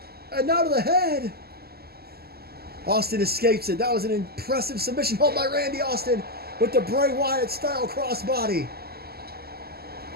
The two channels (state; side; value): late; left; 0.46 ms